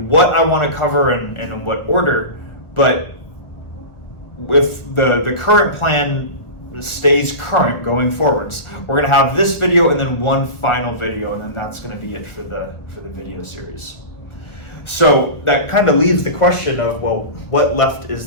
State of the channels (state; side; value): late; right; 1.4 ms